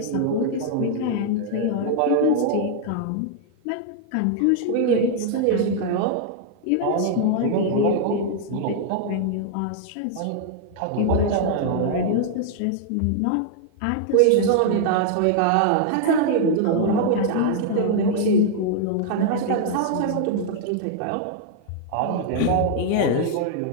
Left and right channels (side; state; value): both; different; correlation -0.01